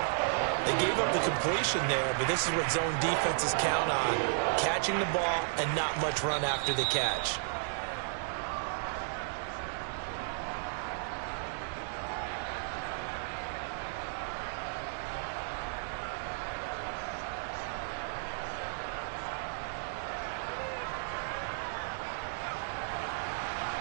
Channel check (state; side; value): silent; left; digital silence